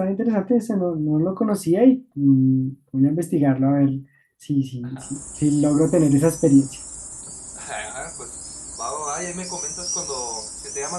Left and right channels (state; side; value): identical; both; correlation 1.00